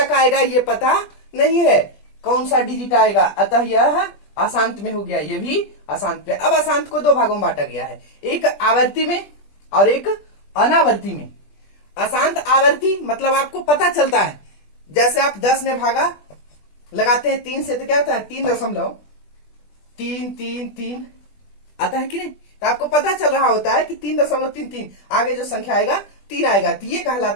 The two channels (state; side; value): late; right; 20 ms